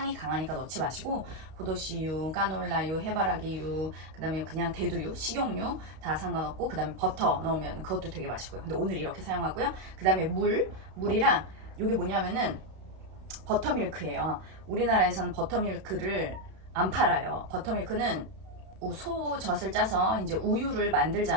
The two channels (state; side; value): late; left; 32 ms